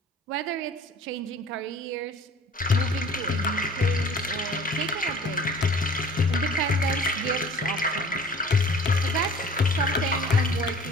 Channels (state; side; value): normal; both; correlation 0.47